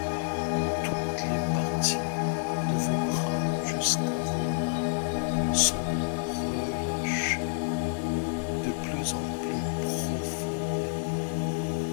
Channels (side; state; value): right; silent; digital silence